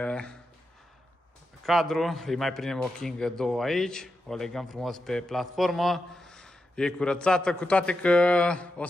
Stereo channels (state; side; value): normal; both; correlation 0.88